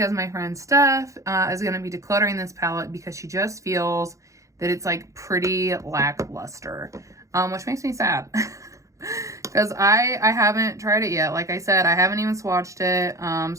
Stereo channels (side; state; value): left; late; 0.15 ms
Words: my friend Steph is going to be decluttering this palette because she just feels that it's like pretty lackluster, which makes me sad. Because I haven't tried it yet. Like I said, I haven't even swatched it.